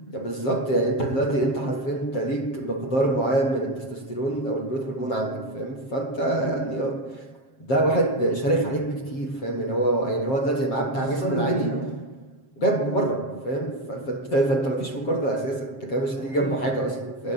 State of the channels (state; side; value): late; right; 7.5 ms